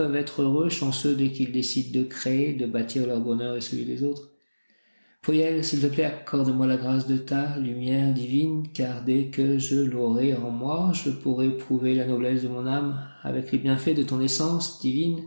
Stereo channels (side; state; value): both; inverted; correlation -1.00